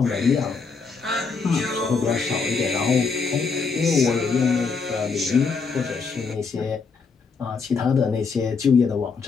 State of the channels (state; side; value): quieter; right; 5.0 dB